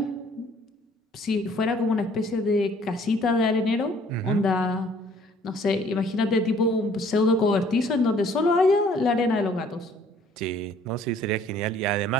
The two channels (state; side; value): normal; both; correlation 0.58